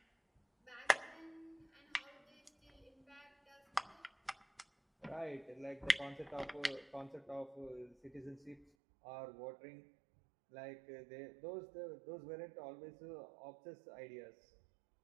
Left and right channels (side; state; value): left; drops out; at 8.7 s